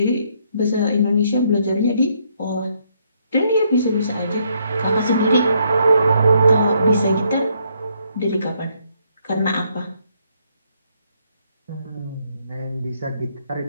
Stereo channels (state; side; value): inverted; both; correlation -0.72